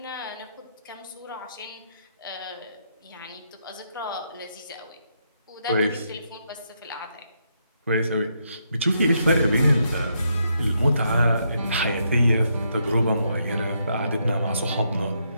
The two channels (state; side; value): inverted; both; correlation -0.78